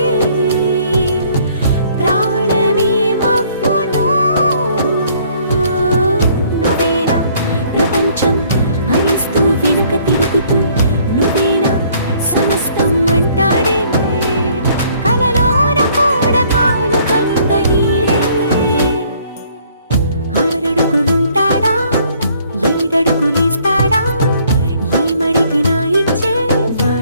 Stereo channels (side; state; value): both; inverted; correlation -0.61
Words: ప్రాణమే మవ్వునో నువ్వేనా ప్రపంచం అనిస్తూ వెనుక తిరుగుతూ నువ్వేనా సమస్తం అంటాడే కలలోన కూడా కాను కంద నీడే ఆరడుగులుంటాడా ఏడడుగులేస్తాడా ఏమడిగినా